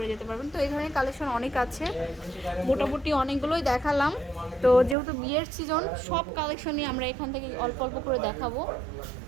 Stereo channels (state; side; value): drops out; left; at 5.0 s